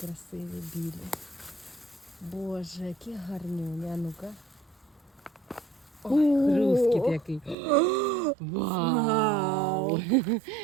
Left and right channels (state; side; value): drops out; left; at 7.6 s